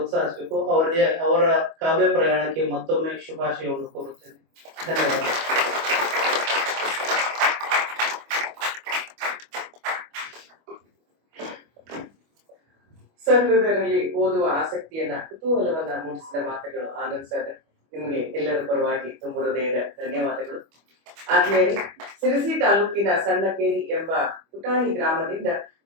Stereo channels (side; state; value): left; late; 25 ms